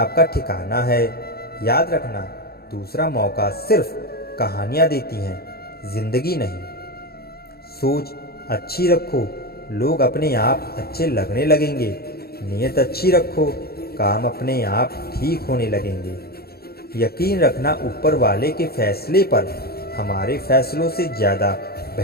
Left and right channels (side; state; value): right; late; 0.45 ms